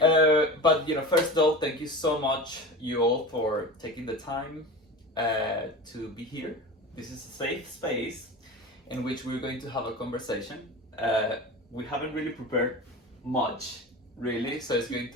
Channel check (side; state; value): both; normal; correlation 0.31